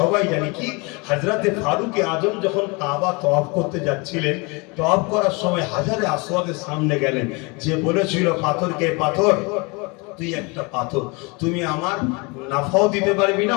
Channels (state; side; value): quieter; right; 28.4 dB